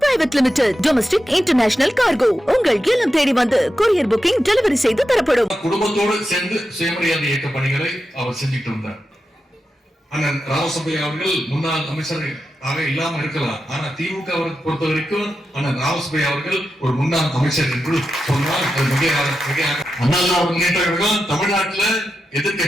private limited domestic international cargo உங்கள் இல்லம் தேடி வந்து கொரியர் புக்கிங் டெலிவரி செய்து தரப்படும். குடும்பத்தோடு சேர்ந்து சுயமரியாதை இயக்க பணிகளை அவர் செஞ்சுட்டு வந்தார். அண்ணன் ராமசுப்பையா அவர்கள் முன்னாள் அமைச்சர் ஆக இல்லாம இருக்கலாம், ஆனா திமுக பொறுத்த வரைக்கும் அண்ணன் ராமசுப்பையா அவர்கள் ஒரு முன்னாள் அமைச்சர் என்று சொன்னால் அது மிக அண்ணா முன்னேற்ற கழகம் தமிழ்நாட்டுல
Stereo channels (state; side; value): normal; both; correlation 0.89